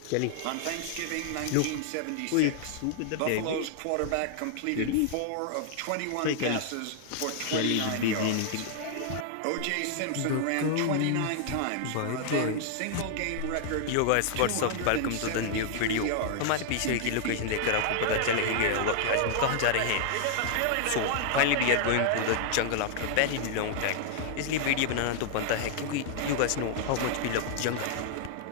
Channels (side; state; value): both; different; correlation -0.01